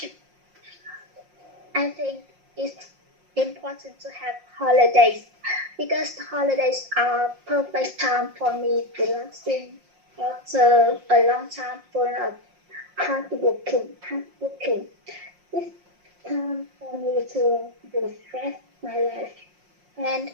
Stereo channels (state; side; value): late; left; 5.6 ms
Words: I think it's important to have holidays because holidays are perfect time for me relaxing after a long time full of hard working. It's time for me to refresh my life and